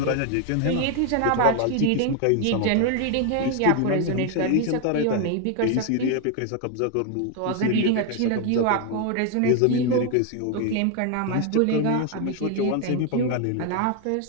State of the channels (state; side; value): different; both; correlation 0.01